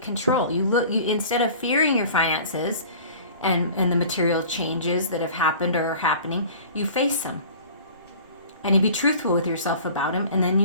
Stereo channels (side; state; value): both; inverted; correlation -0.44